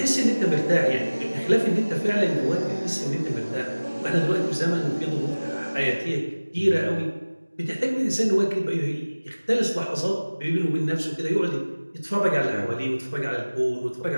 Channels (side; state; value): both; inverted; correlation -1.00